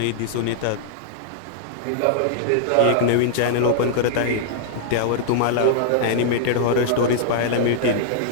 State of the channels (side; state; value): both; different; correlation -0.01